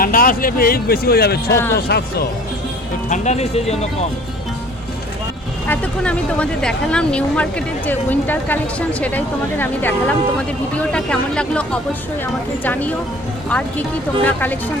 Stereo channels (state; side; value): normal; both; correlation 0.49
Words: আসলে এই বেশি হয়ে যাবে 600 হ্যাঁ। 700 তো ঠান্ডা নেই সেই জন্য কম এতক্ষণ আমি তোমাদের দেখালাম নিউ মার্কেটের যে উইন্টার কালেকশন, সেটাই তোমাদের আমি দেখালাম। তোমাদের ভিডিওটা কেমন লাগলো অবশ্যই আমাকে জানিও, আর কি কি তোমরা কালেকশন